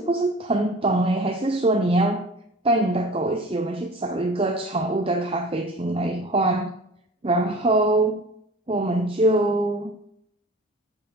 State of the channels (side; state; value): both; normal; correlation 0.40